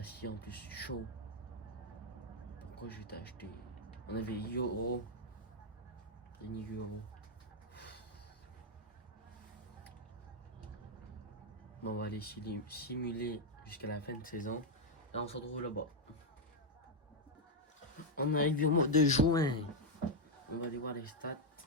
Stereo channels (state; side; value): normal; both; correlation 0.01